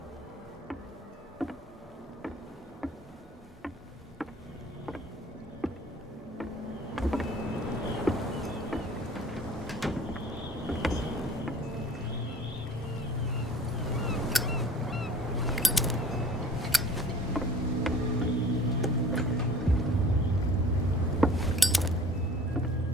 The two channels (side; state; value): both; normal; correlation 0.48